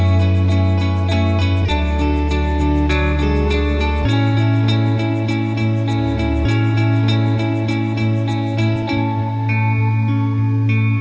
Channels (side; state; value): both; identical; correlation 1.00